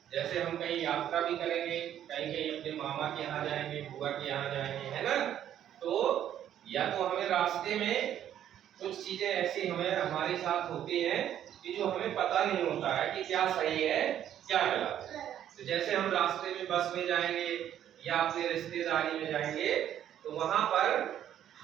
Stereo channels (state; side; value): quieter; left; 10.7 dB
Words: जैसे हम कहीं यात्रा भी करेंगे, कहीं कहीं अपने मामा के यहाँ जाएंगे, बुआ के यहाँ जाएंगे, है ना। तो या तो हमें रास्ते में कुछ चीजें ऐसी हमें हमारे साथ होती हैं कि जो हमें पता नहीं होता है कि क्या सही है क्या गलत है। तो जैसे हम रास्ते में बस में जाएंगे या अपनी रिश्तेदारी में जाएंगे, तो वहां पर